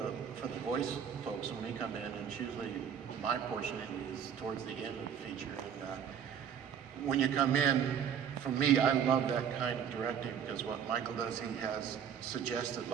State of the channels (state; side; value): quieter; left; 8.2 dB